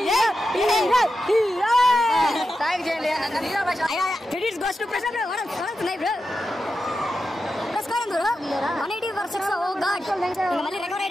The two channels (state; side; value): normal; both; correlation 0.89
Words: థాంక్ చేయండి. హీరో భాష credits goes to Prashant bro. World నై bro. Score bro 180 for 6. Oh god, మళ్ళీ రికవర్